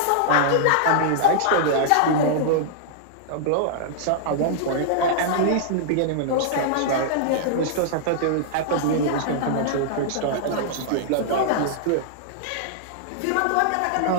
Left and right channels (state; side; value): different; both; correlation -0.02